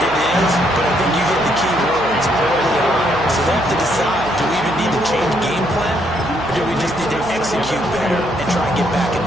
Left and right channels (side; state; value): right; noise; hum, 14 dB below the sound